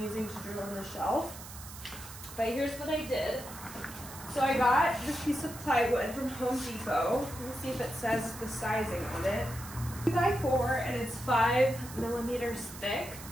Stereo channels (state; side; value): noise; right; hiss, 14 dB below the sound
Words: using to drill in the shelf. But here's what I did. So I got this piece of plywood from Home Depot. Let me see if it says the sizing on it. 2x4, and it's 5 millimeters thick.